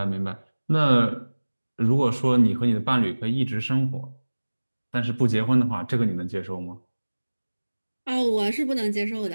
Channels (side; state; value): both; inverted; correlation -1.00